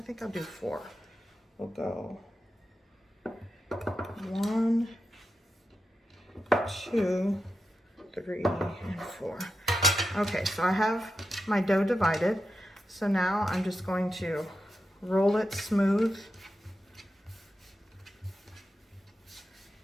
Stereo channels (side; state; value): both; normal; correlation 0.89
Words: think I'll do 4. We'll go 1, 2, 3, and 4. Okay, so I have my dough divided. So now I'm just going to roll it smooth.